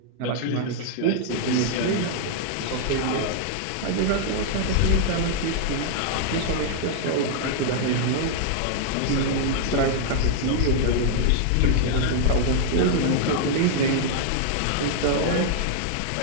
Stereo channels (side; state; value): both; different; correlation -0.01